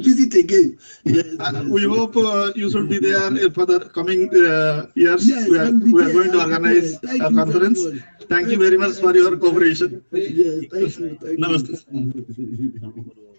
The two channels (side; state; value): both; inverted; correlation -1.00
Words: visit again. Yes. We hope you should be there for the coming years. Yes, we are going to organize a conference. Thank you very much for your cooperation. Yes, thank you. Namaste.